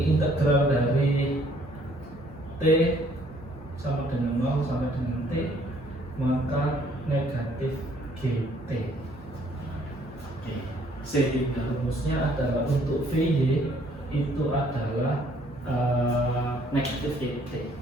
integral dari t sama dengan 0 sampai dengan t, maka negatif gt. Oke, sehingga rumusnya adalah untuk vy itu adalah negatif gt.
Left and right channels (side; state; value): both; normal; correlation 0.63